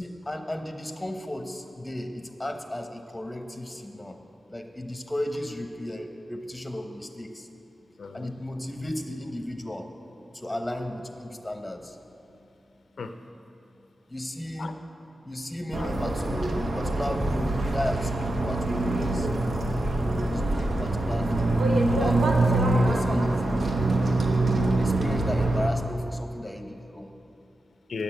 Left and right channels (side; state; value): both; normal; correlation 0.89